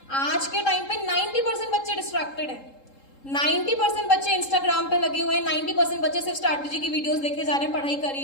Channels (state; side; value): late; right; 3.7 ms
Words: आज के टाइम पे 90% बच्चे डिस्ट्रैक्टेड हैं, 90% बच्चे इंस्टाग्राम पे लगे हुए हैं, 90% बच्चे सिर्फ स्ट्रैटेजी की वीडियोस देखे जा रहे हैं, पढ़ाई कर ही